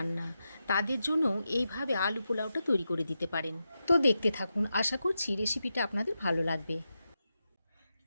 না, তাদের জন্য এইভাবে আলু পোলাওটা তৈরি করে দিতে পারেন। তো দেখতে থাকুন, আশা করছি রেসিপিটা আপনাদের ভালো লাগবে।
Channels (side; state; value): both; inverted; correlation -0.89